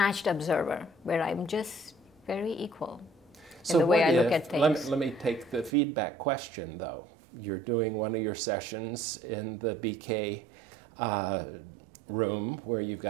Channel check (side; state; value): left; drops out; at 5.7 s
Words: observer, where I'm just very equal in the way I look at things. Let me take the feedback question, though. You're doing one of your sessions in the BK room where you've